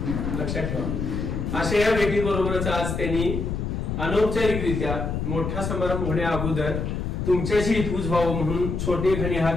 लक्षात ठेवा. अशा या भेटीबरोबरच आज त्यांनी अनौपचारिकरित्या मोठा समारंभ होण्या अगोदर तुमच्याशी हितगुज व्हावं म्हणून छोटे खणी हा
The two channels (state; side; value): noise; left; rumble, 3 dB below the sound